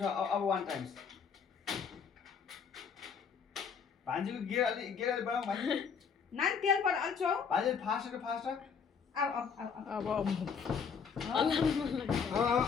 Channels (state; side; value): quieter; right; 6.3 dB